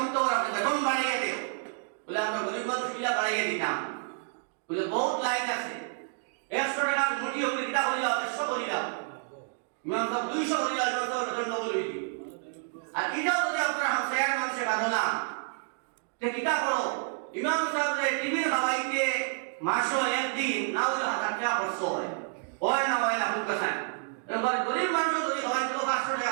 আপনি বেতন বাড়িয়ে দিও বলে আমরা গরিব মানুষ কিলা বাড়িয়ে দিতাম বলে বহুত লাইন আছে। 100 টাকা মুঠি হলে কিটা করিলাম 100 করিলাম, ইমাম সাহেব 200 করিলাম, ইমাম সাহেব বেতন ডবল হইল। আর এটাও যদি আপনারা হামসায়ার মানুষে বাঁধো না তে কিটা করো, ইমাম সাহেব টিভির খাওয়াইতে মাসও একদিন না হলে 1000 টাকা খরচ হয় না হয় না খুব কাছে। এবার গরিব মানুষ যদি খাওয়াইতে 500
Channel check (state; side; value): silent; left; 58 dB below the other